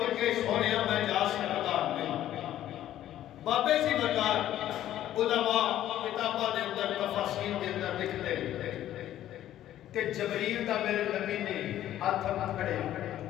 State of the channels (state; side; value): quieter; right; 12.5 dB